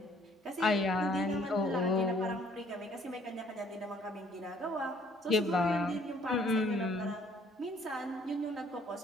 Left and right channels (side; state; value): both; normal; correlation 0.61